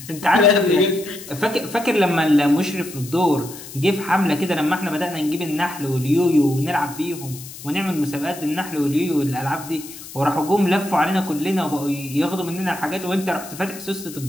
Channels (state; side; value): noise; left; hiss, 14 dB below the sound